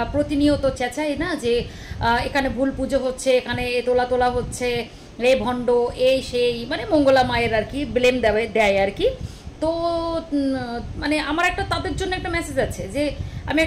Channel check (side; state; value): both; identical; correlation 1.00